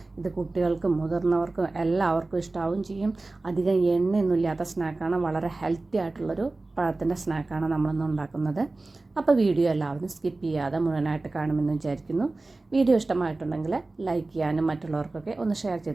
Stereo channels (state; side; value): quieter; left; 3.2 dB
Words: ഇത് കുട്ടികൾക്കും മുതിർന്നവർക്കും എല്ലാവർക്കും ഇഷ്ടാവും ചെയ്യും. അധികം എണ്ണയൊന്നുമില്ലാത്ത സ്നാക്കാണ്. വളരെ ഹെൽത്തി ആയിട്ടുള്ളൊരു പഴത്തിൻ്റെ സ്നാക്കാണ് നമ്മളിന്ന് ഉണ്ടാക്കുന്നത്. അപ്പോൾ വീഡിയോ എല്ലാവരും സ്കിപ്പ് ചെയ്യാതെ മുഴുവനായിട്ട് കാണുമെന്ന് വിചാരിക്കുന്നു. വീഡിയോ ഇഷ്ടമായിട്ടുണ്ടെങ്കിൽ ലൈക്ക് ചെയ്യാനും മറ്റുള്ളവർക്കൊക്കെ ഒന്ന് ഷെയർ